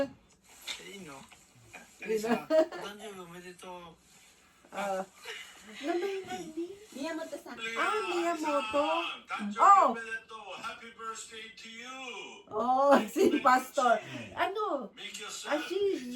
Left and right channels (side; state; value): both; identical; correlation 1.00